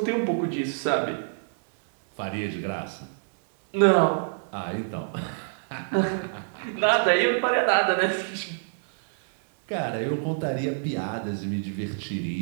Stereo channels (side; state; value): left; silent; 61 dB below the other